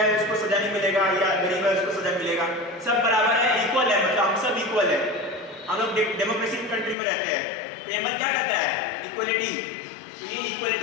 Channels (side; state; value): right; drops out; at 7.0 s